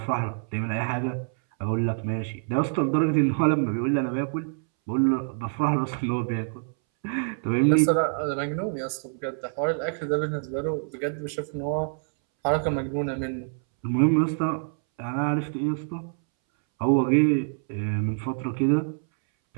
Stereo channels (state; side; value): silent; left; 61 dB below the other